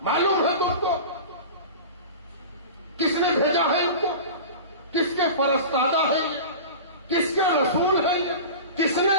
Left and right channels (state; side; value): inverted; both; correlation -0.32